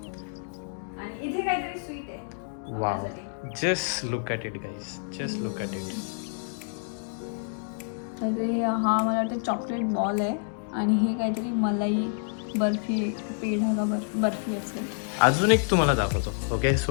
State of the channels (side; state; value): right; silent; digital silence